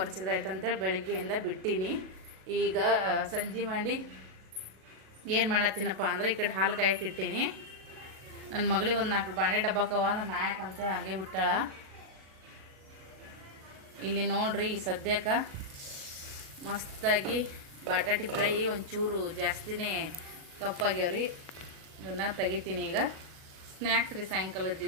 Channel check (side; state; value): left; late; 37 ms